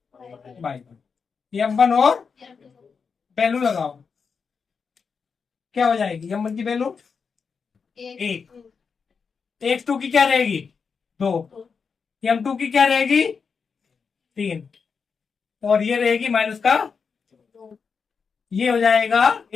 by 1। M1 और वैल्यू लगाओ, क्या हो जाएगी? M1 की वैल्यू 1, x2 की क्या रहेगी? 2, M2 की क्या रहेगी? 3, और ये रहेगी माइनस का, ये हो जाएगा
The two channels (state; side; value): quieter; right; 5.6 dB